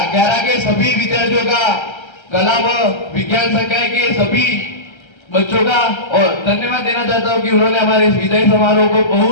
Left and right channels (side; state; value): right; late; 1.3 ms